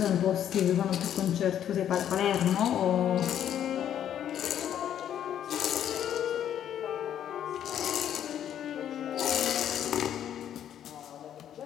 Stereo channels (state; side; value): quieter; right; 10.1 dB